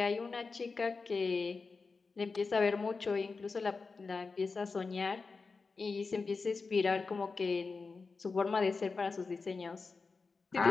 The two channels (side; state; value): right; quieter; 4.4 dB